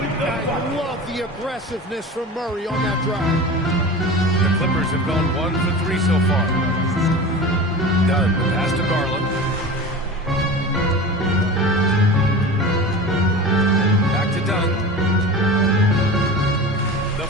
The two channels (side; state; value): both; normal; correlation 0.32